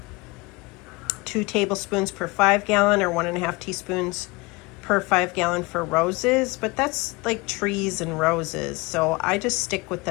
2 tablespoons per 5 gallon, or 1.5 teaspoons per 5 gallon for roses, but that's like trees and roses. So I just stick with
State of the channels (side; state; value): right; quieter; 24.4 dB